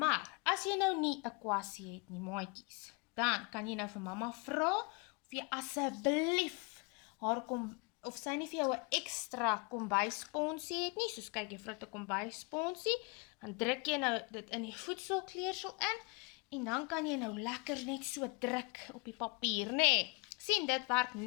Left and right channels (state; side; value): quieter; right; 30.5 dB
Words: as jy nou nie 'n kwassie het nie, maatjies, dan kan jy nou vir mamma vra, of jy asseblief haar of sy nie vir jou 'n ekstra kombuissponsie het nie, soos kyk juffrou het 'n kombuissponsie, dan druk jy nou dit in die voedselkleursel in, en dan kan jy nou lekker net so druk op die papier, nee. Sien, dit werk